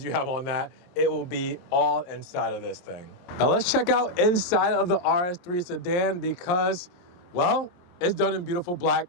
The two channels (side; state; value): right; late; 23 ms